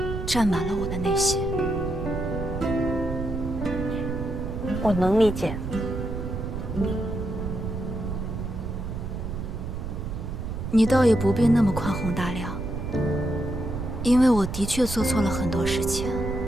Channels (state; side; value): noise; right; rumble, 5 dB below the sound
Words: 占满了我的内心。我能理解。你倒也不必那么宽宏大量，因为我的确做错了很多事情。